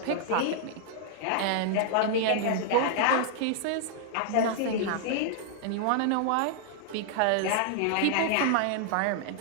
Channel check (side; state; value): both; different; correlation -0.01